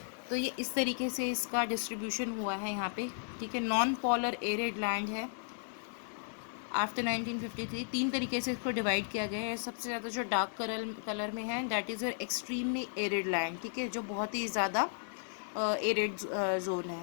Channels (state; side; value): silent; right; digital silence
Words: तो ये इस तरीके से इसका डिस्ट्रीब्यूशन हुआ है यहाँ पे। ठीक है, नॉन पोलर एरिड लैंड है। आफ्टर 1953 तीन तरीके से इसको डिवाइड किया गया है। सबसे ज़्यादा जो डार्क कलर में है that is your extremely arid land. ठीक है, जो बहुत ही ज़्यादा एरिड जोन